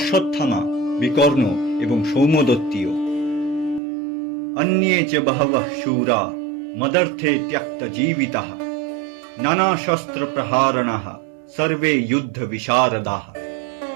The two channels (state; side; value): drops out; left; at 3.8 s